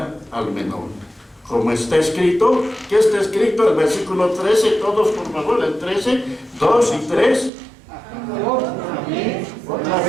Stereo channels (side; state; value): left; drops out; at 7.5 s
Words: al menor. Como está escrito, ¿qué está escrito? El versículo 13, todos por favor, el 13, 2 y 3. Otra